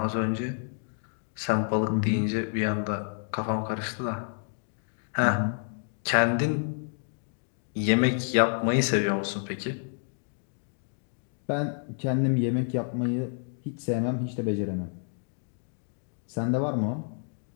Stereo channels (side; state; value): right; silent; 58 dB below the other